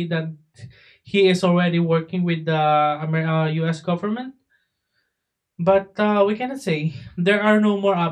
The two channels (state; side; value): identical; both; correlation 1.00